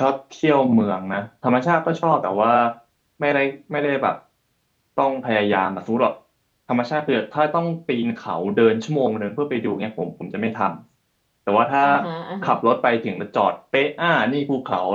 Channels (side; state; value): both; identical; correlation 1.00